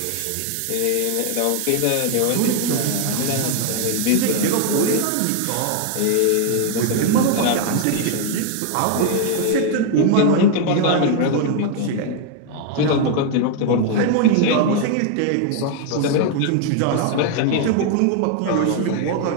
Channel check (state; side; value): different; both; correlation 0.01